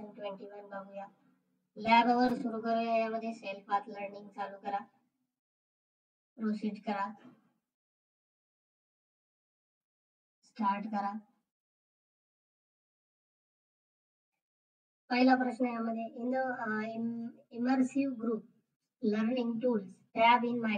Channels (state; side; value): identical; both; correlation 1.00